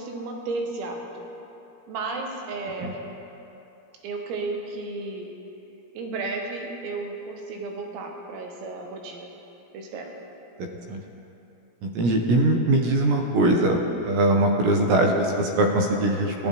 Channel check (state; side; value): late; left; 17 ms